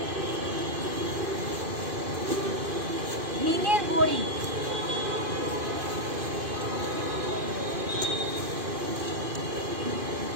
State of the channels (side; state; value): left; late; 2.5 ms